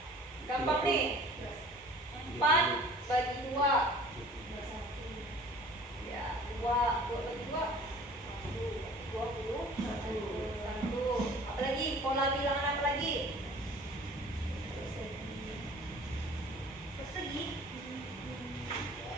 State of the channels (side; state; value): both; normal; correlation 0.48